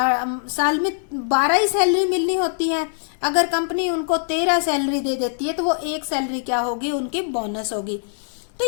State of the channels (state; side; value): silent; right; digital silence